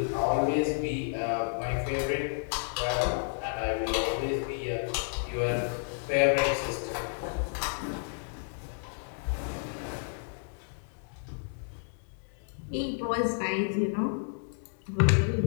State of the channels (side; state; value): right; silent; digital silence